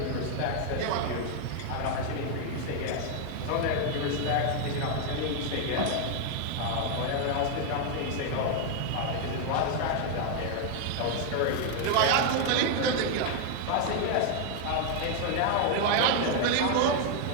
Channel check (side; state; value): both; different; correlation 0.00